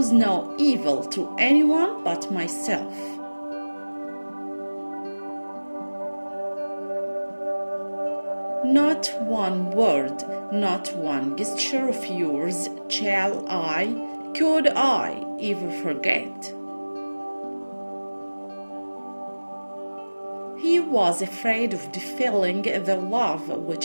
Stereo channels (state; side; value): inverted; both; correlation -1.00